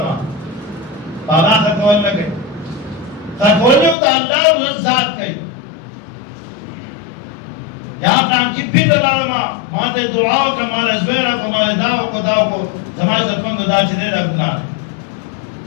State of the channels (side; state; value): right; drops out; at 4.0 s